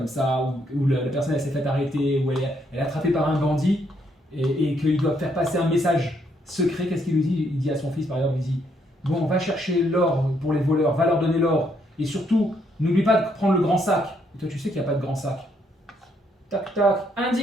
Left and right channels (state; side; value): normal; both; correlation 0.73